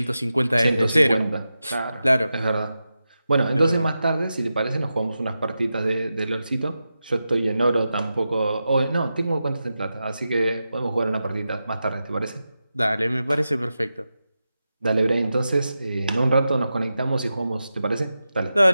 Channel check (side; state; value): both; inverted; correlation -0.91